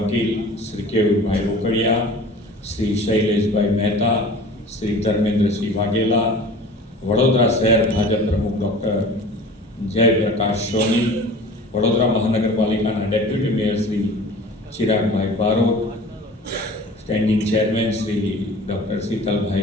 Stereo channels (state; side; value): normal; both; correlation 0.42